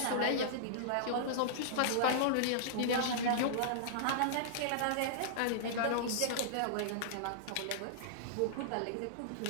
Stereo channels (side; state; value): both; different; correlation -0.02